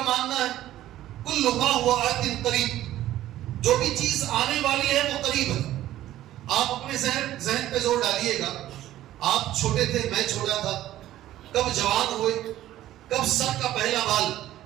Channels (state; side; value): quieter; left; 13.8 dB